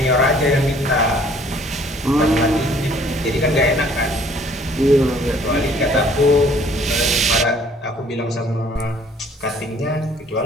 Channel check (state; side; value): normal; both; correlation 0.57